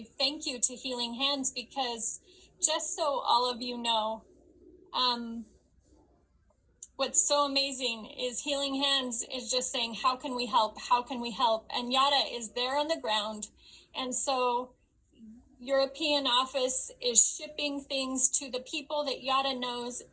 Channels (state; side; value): identical; both; correlation 1.00